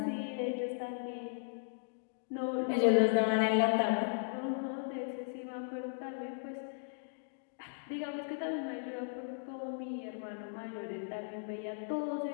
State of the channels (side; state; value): right; silent; digital silence